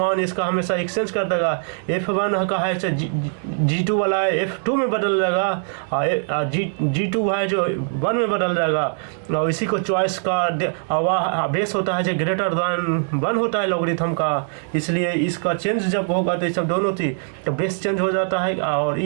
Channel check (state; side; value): silent; left; digital silence